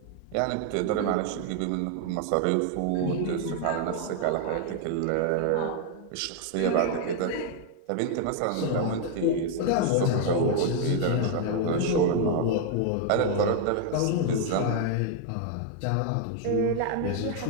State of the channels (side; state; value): both; different; correlation 0.00